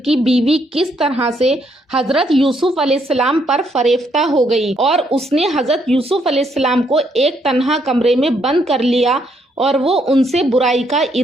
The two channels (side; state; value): both; normal; correlation 0.73